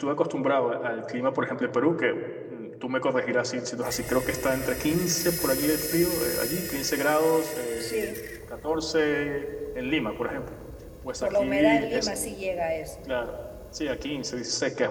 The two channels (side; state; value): both; identical; correlation 1.00